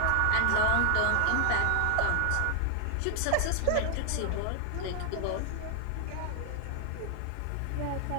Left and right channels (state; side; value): different; both; correlation 0.00